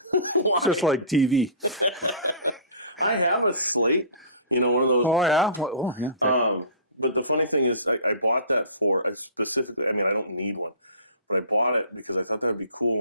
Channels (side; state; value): both; inverted; correlation -0.41